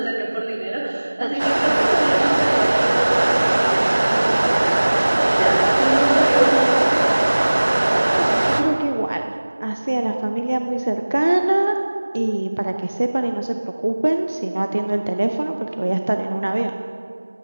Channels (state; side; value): inverted; both; correlation -1.00